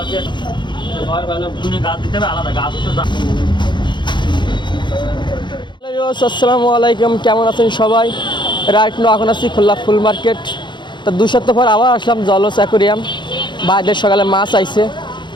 আলাইকুম, কেমন আছেন সবাই? রাইট নো এখন আছি খুলনা ফুল মার্কেট। তো 2 সপ্তাহ পর আবার আসলাম জলস অ্যাকোরিয়াম। বাইরের সকালে মাছ আইছে।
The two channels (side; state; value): right; late; 0.22 ms